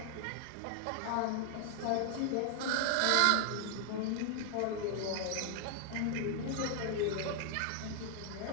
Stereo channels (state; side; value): different; both; correlation 0.00